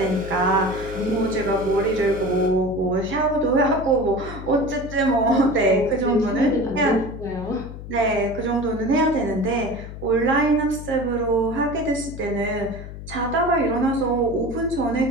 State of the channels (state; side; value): noise; left; hum, 11 dB below the sound